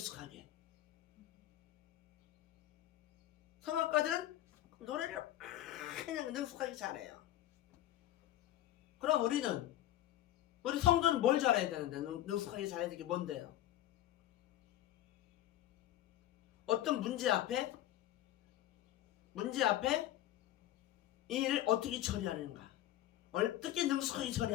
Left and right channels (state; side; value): quieter; right; 13.6 dB